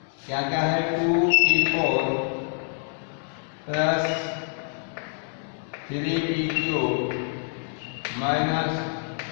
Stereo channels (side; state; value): right; silent; 58 dB below the other